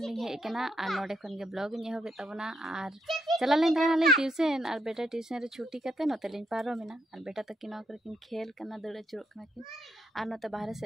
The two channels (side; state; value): both; normal; correlation 0.78